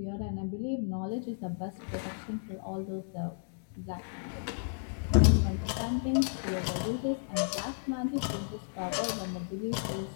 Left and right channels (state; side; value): silent; right; digital silence